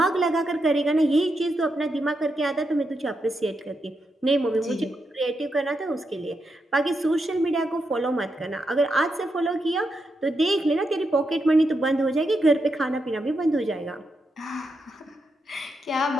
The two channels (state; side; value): normal; both; correlation 0.84